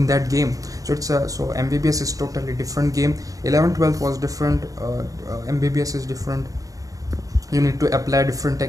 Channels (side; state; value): left; late; 0.17 ms